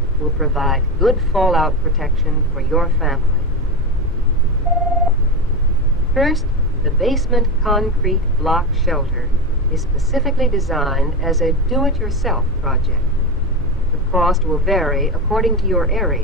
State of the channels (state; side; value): normal; both; correlation 0.18